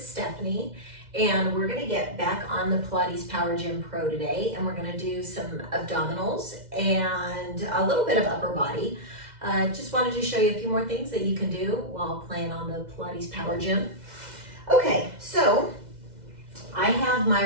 Stephanie and we're going to get back on the Pilates Power Gym Pro today, and we're going to do some abdominals and a little bit of upper body. Just wanted to show you a few more things that you can do while playing on the Pilates Power Gym. Okay, so I have my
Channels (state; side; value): late; left; 2.0 ms